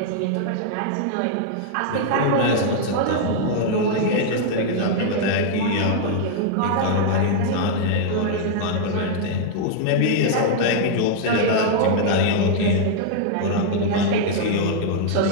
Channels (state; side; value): different; both; correlation -0.01